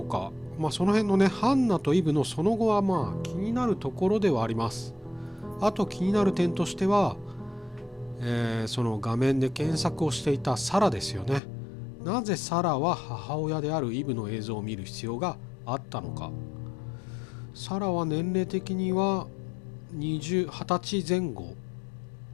か。その辺のね、ハンナとイブのその後は気になるところではあります。あと気になる点としては、その画面で検索をしていたサラですよね。なぜサラは母親であるイブの映像を見る必要があったのか。サラは年齢的には20歳前後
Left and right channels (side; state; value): right; drops out; at 11.4 s